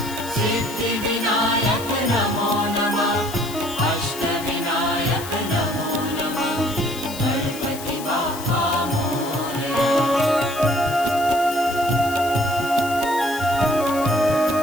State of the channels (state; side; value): noise; left; hiss, 12 dB below the sound